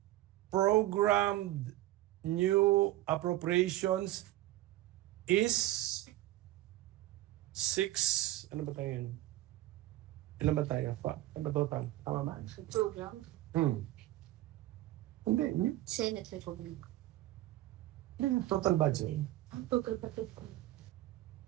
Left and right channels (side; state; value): left; quieter; 15.9 dB